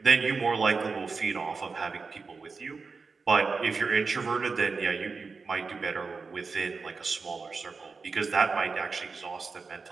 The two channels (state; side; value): quieter; left; 4.6 dB